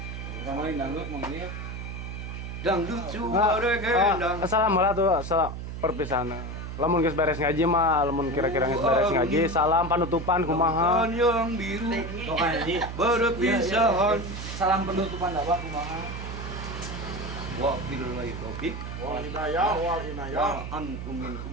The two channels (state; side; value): noise; right; hum, 7 dB below the sound